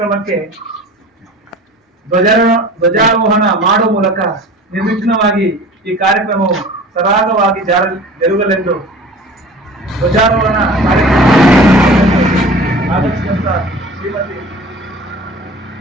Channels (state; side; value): normal; both; correlation 0.41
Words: ಧ್ವಜಾರೋಹಣ ಮಾಡುವ ಮೂಲಕ ನಿರ್ವಿಘ್ನವಾಗಿ ಈ ಕಾರ್ಯಕ್ರಮವು ಸರಾಗವಾಗಿ ಜರುಗಲೆಂದು ಧ್ವಜಾರೋಹಣ ಕಾರ್ಯಕ್ರಮ ಆಗಮಿಸಿದಂತ ಶ್ರೀಮತಿ